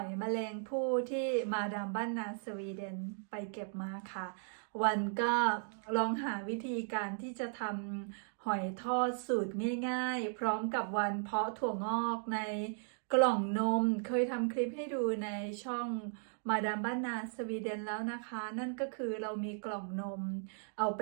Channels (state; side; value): silent; left; digital silence